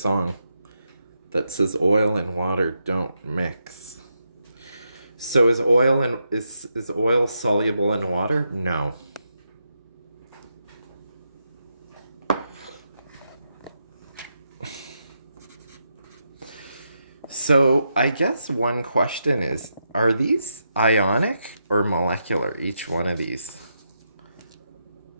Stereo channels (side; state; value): both; inverted; correlation -0.83